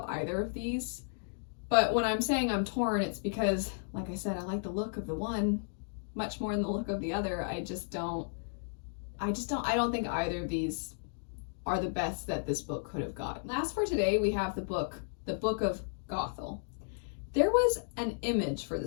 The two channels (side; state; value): right; silent; digital silence